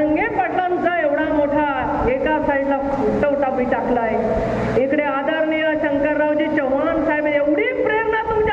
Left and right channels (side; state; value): both; identical; correlation 1.00